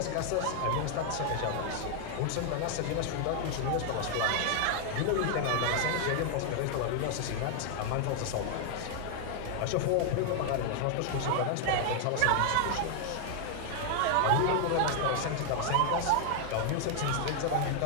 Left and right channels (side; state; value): both; different; correlation 0.00